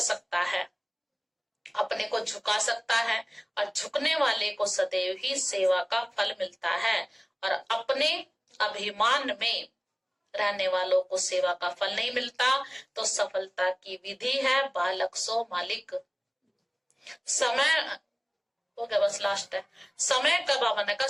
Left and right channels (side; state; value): both; identical; correlation 1.00